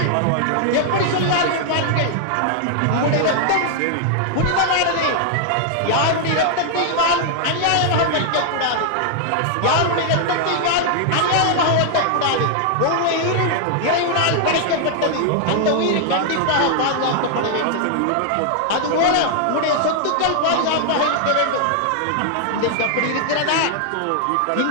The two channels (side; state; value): both; different; correlation 0.00